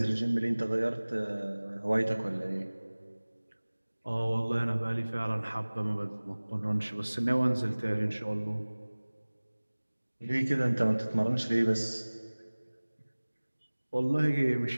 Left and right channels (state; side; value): inverted; both; correlation -1.00